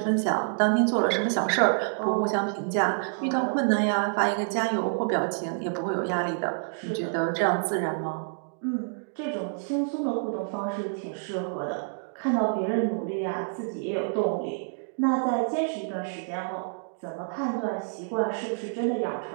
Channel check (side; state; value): left; silent; digital silence